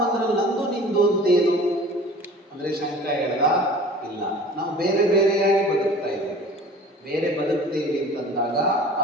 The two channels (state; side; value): normal; both; correlation 0.44